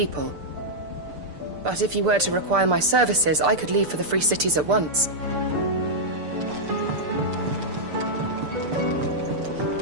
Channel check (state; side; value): late; left; 6.8 ms